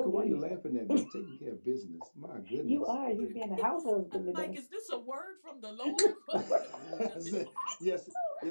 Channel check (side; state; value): both; inverted; correlation -1.00